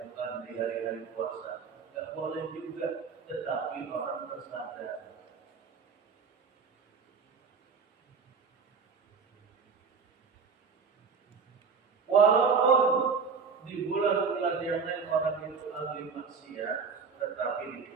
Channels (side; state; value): left; quieter; 5.4 dB